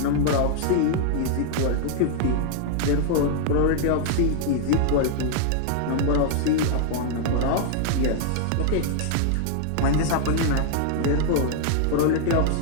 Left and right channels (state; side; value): different; both; correlation 0.00